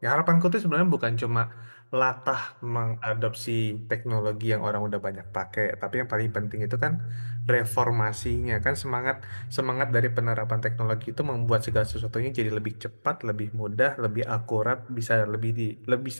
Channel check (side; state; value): both; inverted; correlation -1.00